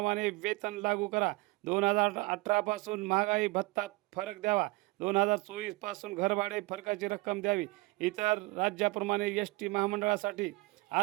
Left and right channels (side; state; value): left; quieter; 23.8 dB